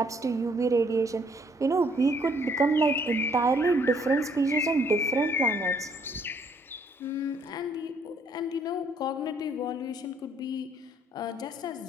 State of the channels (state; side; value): normal; both; correlation 0.65